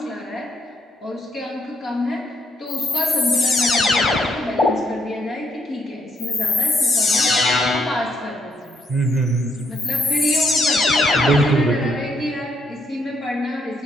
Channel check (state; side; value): normal; both; correlation 0.73